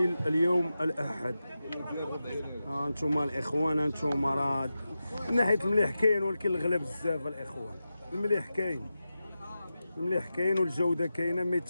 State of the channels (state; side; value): inverted; both; correlation -0.92